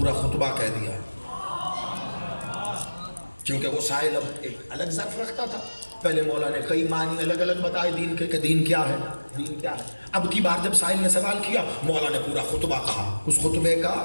خطبہ کہہ دیا، کیونکہ وہ سائل اب ایک الگ ظرف رکھتا تھا۔ پہلے مولا نے کئی معنی الگ الگ بتائے دین کے کہ دین کیا ہے، دین کیا ہے۔ اب کی بار جب سائل نے سوال کیا مولا نے پورا خطبہ کہا. اس خطبے کا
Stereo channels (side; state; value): both; inverted; correlation -1.00